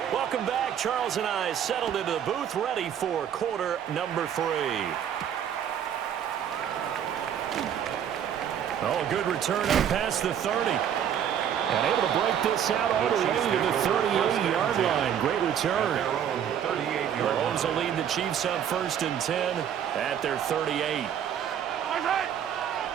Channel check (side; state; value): left; quieter; 9.2 dB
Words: Welcome back. Charles and I settled into the booth, ready for quarter number 3. Oh, a good return up past the 30. And able to break this out all the way to the 38-yard line. Great return. Mahomes will lead the Chiefs up 1st and 10 at their 38.